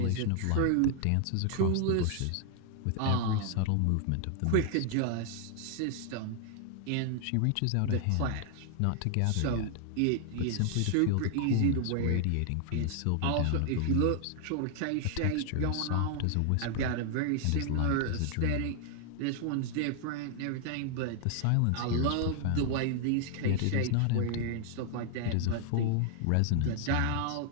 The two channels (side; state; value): both; different; correlation 0.00